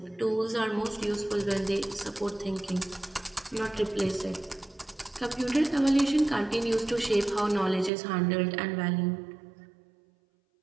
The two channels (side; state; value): left; drops out; at 7.9 s